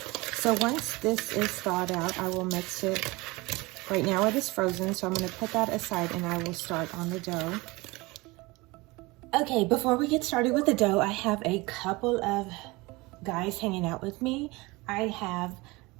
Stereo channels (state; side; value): quieter; left; 23.1 dB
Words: So once this is thawed out, I will mix it. Right now it is frozen, so I'm going to put that aside and I will start on the dough. Okay, before we get started with the dough, I have a couple of guys hanging out with me. I have